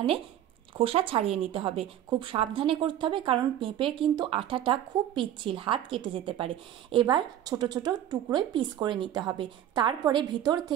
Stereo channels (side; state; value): left; quieter; 11.4 dB